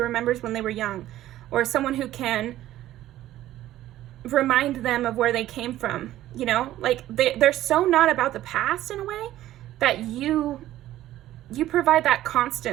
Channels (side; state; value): left; quieter; 14.0 dB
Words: when they were young, or someone who can remind them of where they came from. They're so not about the past in a way that you provide that